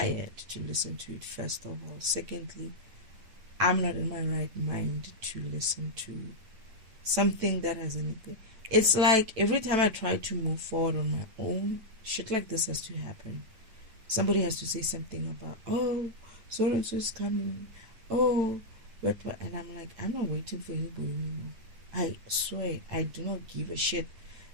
to listen to it, first of all. Secondly, I'm not in my right mind to listen to something that has anything. It's like every time I try to move forward on my own, shit like this has to happen. Somebody has to say something about, oh, so and so is coming. Oh, what? And I'm like, I'm not waiting for anybody anymore. I swear, I do not give a shit.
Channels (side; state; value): left; late; 9.0 ms